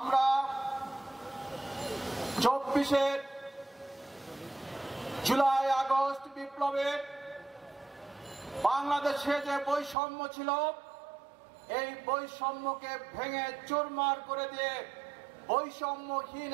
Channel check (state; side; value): drops out; left; at 10.0 s